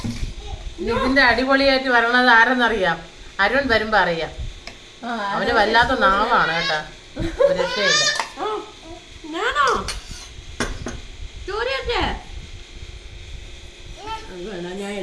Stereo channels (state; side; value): identical; both; correlation 1.00